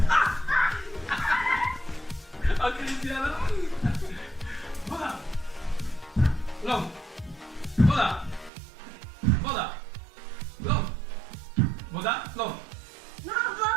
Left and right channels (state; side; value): drops out; left; at 8.5 s